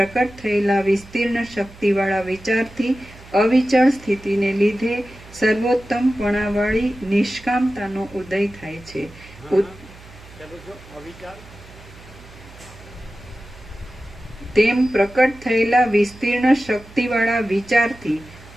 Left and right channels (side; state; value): right; noise; hum, 21 dB below the sound